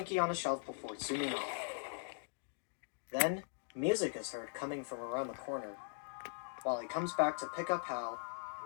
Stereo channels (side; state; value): right; silent; digital silence